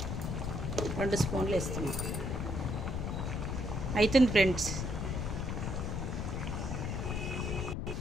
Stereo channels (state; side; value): noise; left; rumble, 2 dB below the sound